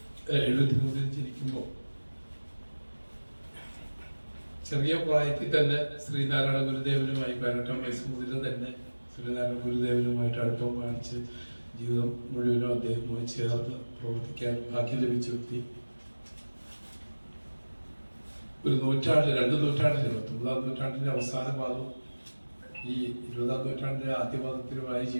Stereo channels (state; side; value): inverted; both; correlation -1.00